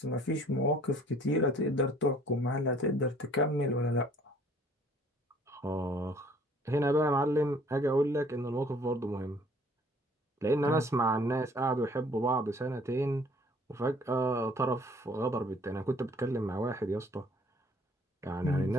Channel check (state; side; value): normal; both; correlation 0.56